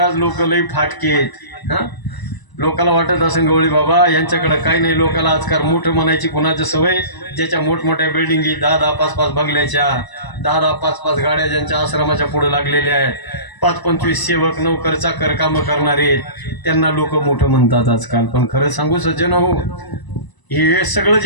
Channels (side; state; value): right; late; 1.0 ms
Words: लोक लई फाटकेत. लोकाला वाटत असेल गवळी बाबा यांच्याकडे काही नाही. लोकाला आजकाल मोठं म्हणायची कुणाची सवय, ज्याच्या मोठमोठ्या बिल्डिंगी 10-10, 5-5 बंगल्याच्या, 10-10, 5-5 गाड्या ज्यांच्या आश्रमाच्या पुढे लागलेल्या आहेत, 5-25 सेवक नोकर चाकर कामं करणारे, त्यांना लोक मोठं म्हणतात आजकाल. पण खरं सांगू सज्जन हो, हे सगळं